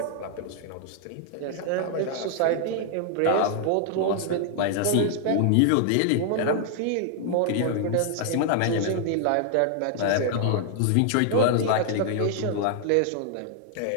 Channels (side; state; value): both; different; correlation 0.00